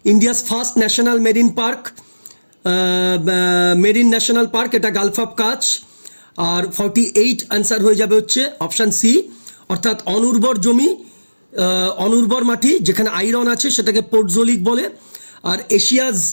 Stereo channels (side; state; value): both; inverted; correlation -1.00